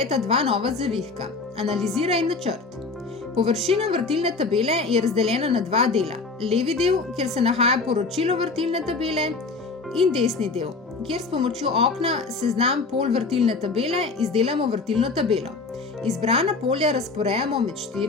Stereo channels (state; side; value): quieter; right; 4.0 dB